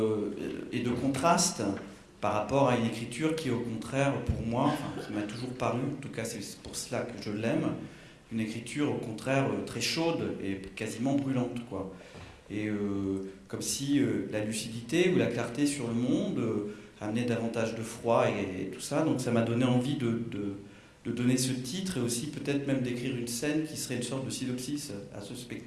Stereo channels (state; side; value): identical; both; correlation 1.00